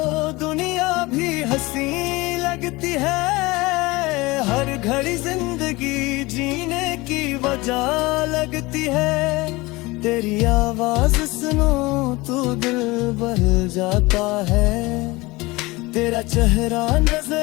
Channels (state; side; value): quieter; right; 22.2 dB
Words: दुनिया भी हंसी लगती है, हर घड़ी जिंदगी जीने की वजह लगती है। तेरी आवाज सुनो तो दिल बहल जाता है, तेरा चेहरा